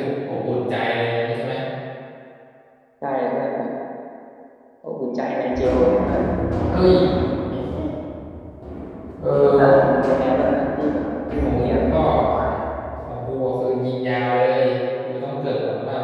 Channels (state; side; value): identical; both; correlation 1.00